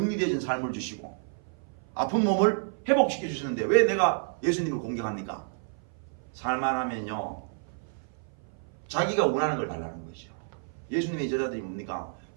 삶을 주시고 아픈 몸을 회복시켜 주시는데 왜 내가 예수님을 공격합니까? 살만하면요 자기가 원하는 걸 달라는 거죠. 예수님의 제자들이 뭡니까?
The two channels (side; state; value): left; silent; 56 dB below the other